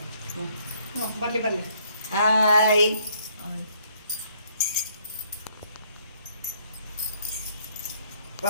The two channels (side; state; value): both; inverted; correlation -0.66